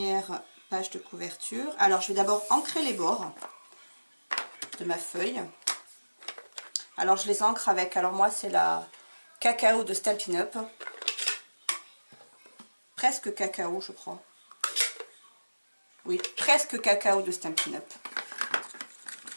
page de couverture. Alors je vais d'abord ancrer les bords de ma feuille. Alors je les ancre avec, alors moi c'est la cacao de Stampin' Up. Presque cacao je crois. Oui, presque cacao de Stampin' Up.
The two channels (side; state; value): both; inverted; correlation -1.00